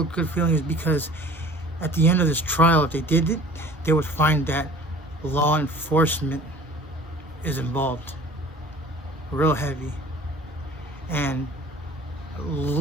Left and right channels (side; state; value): both; normal; correlation 0.46